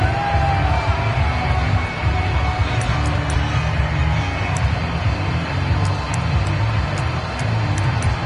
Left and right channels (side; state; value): both; identical; correlation 1.00